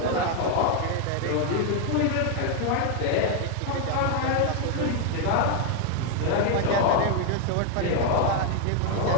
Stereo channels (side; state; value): both; different; correlation 0.01